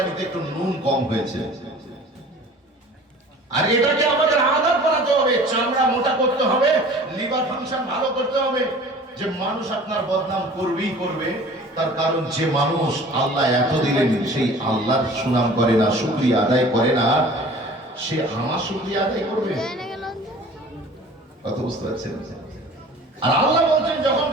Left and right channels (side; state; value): both; normal; correlation 0.45